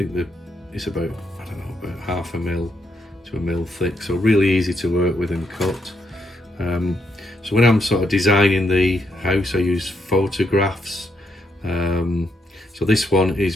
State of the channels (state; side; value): normal; both; correlation 0.78